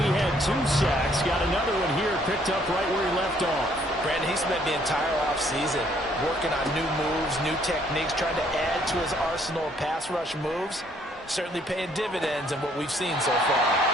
he had 2 sacks. Got another one here, picked up right where he left off. Brandon, he spent the entire offseason working on new moves, new techniques, trying to add to his arsenal of pass rush moves. Certainly paying dividends in what we've seen so far.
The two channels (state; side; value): normal; both; correlation 0.65